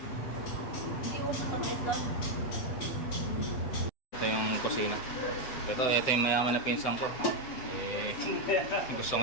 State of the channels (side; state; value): right; late; 7.9 ms